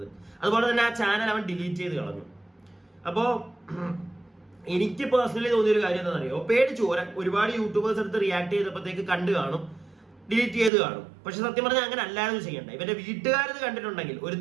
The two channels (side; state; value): left; drops out; at 10.7 s